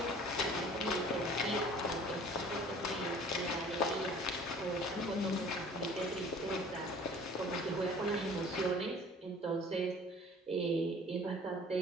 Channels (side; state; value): both; normal; correlation 0.49